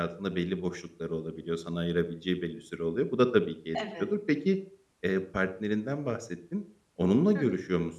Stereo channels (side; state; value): both; identical; correlation 1.00